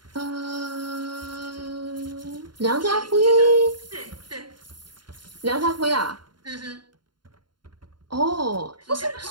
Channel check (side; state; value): left; late; 0.72 ms